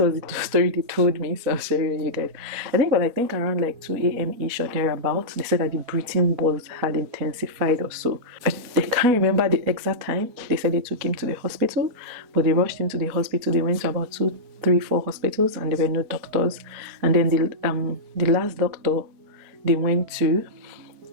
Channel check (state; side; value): late; left; 4.2 ms